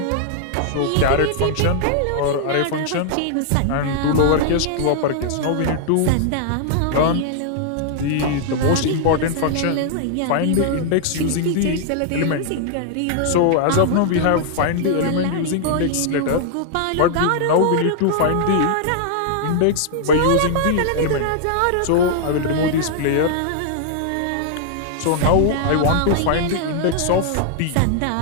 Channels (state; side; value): different; both; correlation -0.01